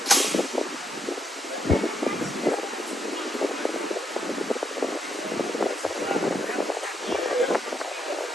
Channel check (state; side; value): normal; both; correlation 0.75